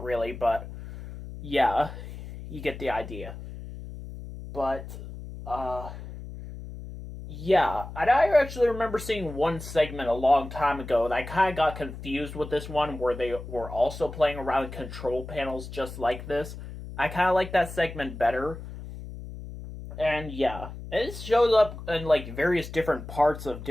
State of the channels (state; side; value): noise; left; hum, 11 dB below the sound